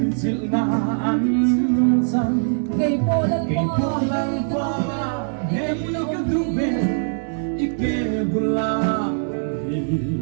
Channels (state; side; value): silent; left; digital silence